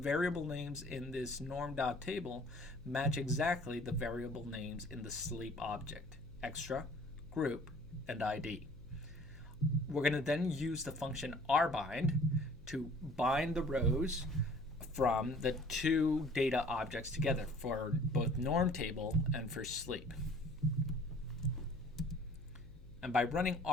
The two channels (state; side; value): noise; left; hum, 19 dB below the sound